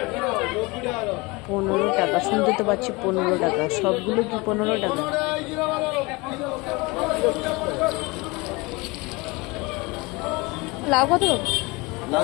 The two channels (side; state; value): right; quieter; 24.9 dB